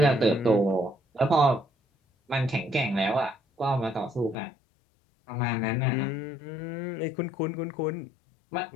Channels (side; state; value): right; drops out; at 4.4 s